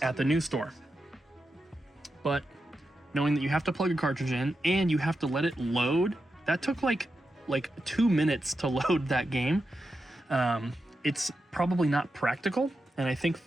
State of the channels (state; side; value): normal; both; correlation 0.89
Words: at the news store. But knowing that you have to plug a cartridge in and you have to let it load, that took like 2 minutes to load that game. It's probably not practical. And I think